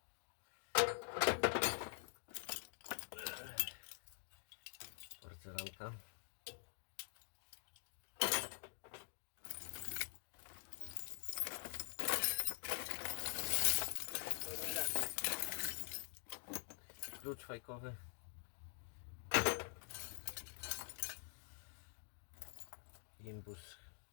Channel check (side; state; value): right; silent; digital silence